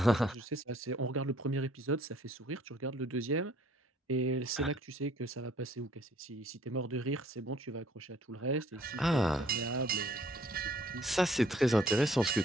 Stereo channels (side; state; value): both; normal; correlation 0.60